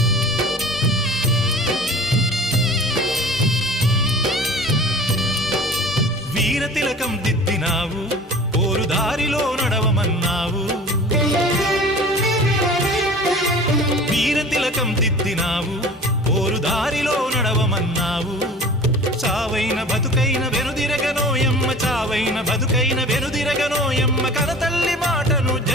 వీర తిలకం దిద్దినావు పోరు దారిలో నడవమన్నావు వీర తిలకం దిద్దినావు పోరు దారిలో నడవమన్నావు చావైన బతుకైన వెనుదిరగనోయమ్మ చావైన బతుకైన వెనుదిరగనోయమ్మ కనతల్లి మాటను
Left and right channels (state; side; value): normal; both; correlation 0.42